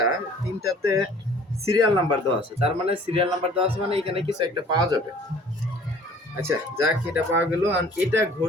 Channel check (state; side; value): normal; both; correlation 0.52